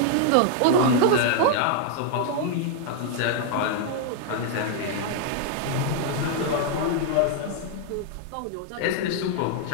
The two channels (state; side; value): different; both; correlation 0.00